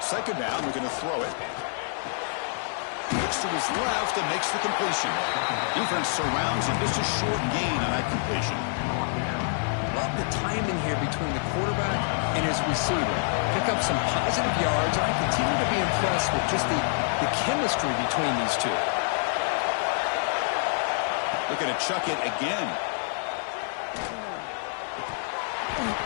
down, we're going to throw it. Looks to his left and makes the completion. Defense surrounds him, just a short gain on that completion. Love the timing here between the quarterback and his receiver. Pick up some positive yards, and I continue to be impressed with just the chemistry between these two. Looking to chuck it again.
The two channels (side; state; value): right; silent; digital silence